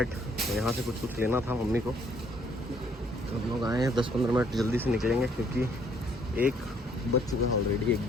तो यहाँ से कुछ लेना था मम्मी को, तो हम लोग आए हैं। 10-15 मिनट जल्दी से निकलेंगे क्योंकि 1 बज चुका है ऑलरेडी,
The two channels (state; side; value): normal; both; correlation 0.65